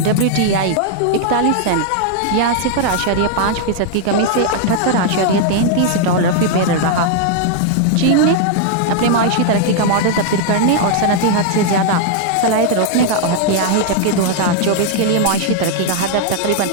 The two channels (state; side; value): different; both; correlation 0.00